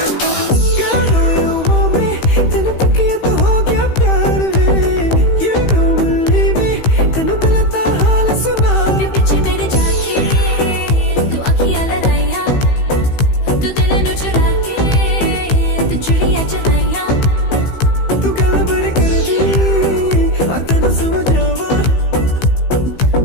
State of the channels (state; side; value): late; right; 15 ms